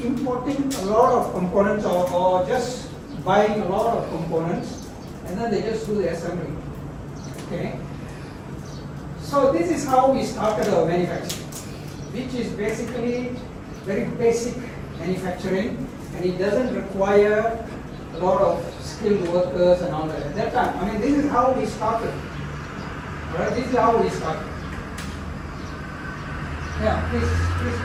importing a lot of components or just buying a lot of components, and then they just do the assembly, okay? So this is how we started our manufacturing, which is basically very basic manufacturing, and it doesn't require a lot of skilled workers and all that. At that time, this is how we started. All right, this is how we started. Yeah, please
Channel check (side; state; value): both; identical; correlation 1.00